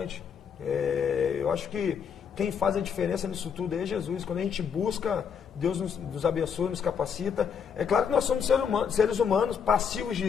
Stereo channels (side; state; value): right; quieter; 7.0 dB